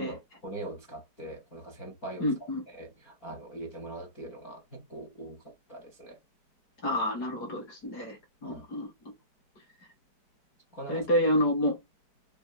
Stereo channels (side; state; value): right; late; 4.8 ms